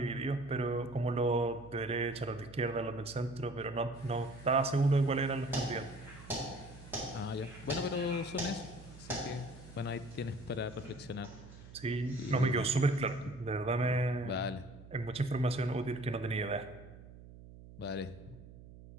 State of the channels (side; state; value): right; noise; hum, 17 dB below the sound